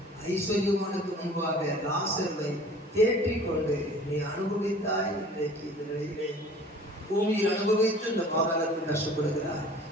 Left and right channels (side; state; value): both; normal; correlation 0.47